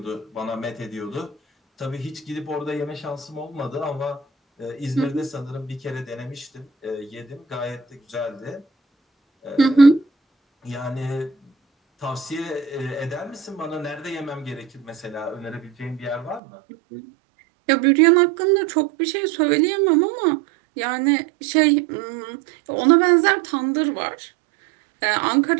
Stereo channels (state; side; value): drops out; left; at 16.4 s